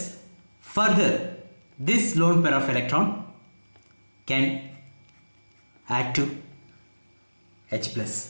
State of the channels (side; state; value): both; inverted; correlation -1.00